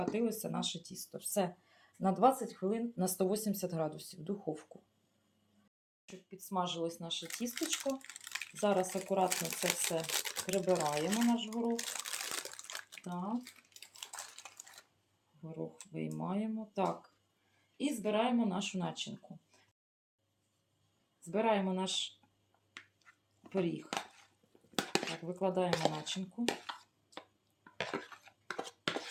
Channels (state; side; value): identical; both; correlation 1.00